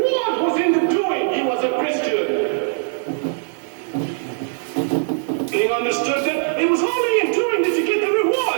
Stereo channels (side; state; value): left; silent; digital silence